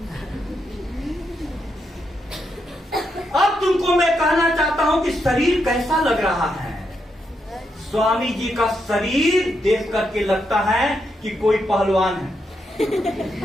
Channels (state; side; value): normal; both; correlation 0.81